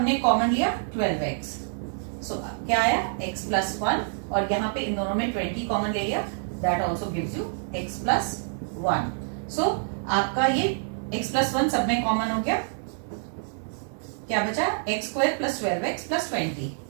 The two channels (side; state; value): left; silent; digital silence